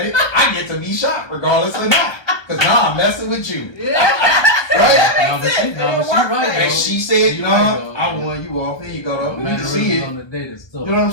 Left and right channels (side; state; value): right; late; 1.2 ms